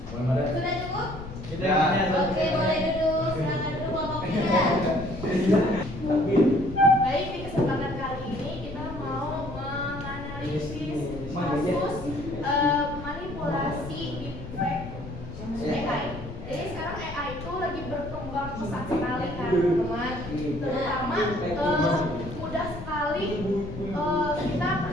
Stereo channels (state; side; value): noise; left; rumble, 11 dB below the sound